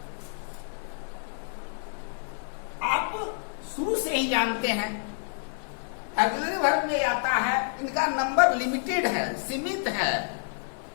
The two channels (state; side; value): silent; right; 59 dB below the other